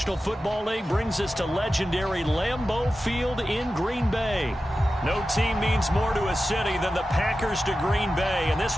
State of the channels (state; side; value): normal; both; correlation 0.93